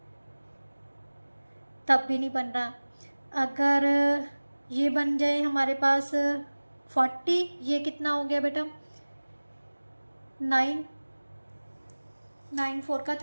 तब भी नहीं बन रहा। अगर ये बन जाए हमारे पास 40, ये कितना हो गया बेटा 9 4 का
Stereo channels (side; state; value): both; inverted; correlation -1.00